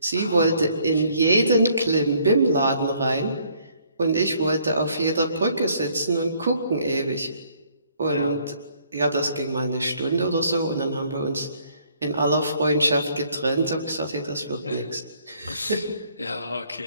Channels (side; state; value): both; inverted; correlation -0.64